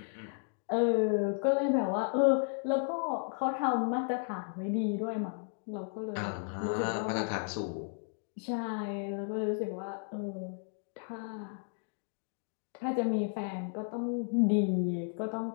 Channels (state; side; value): silent; right; 55 dB below the other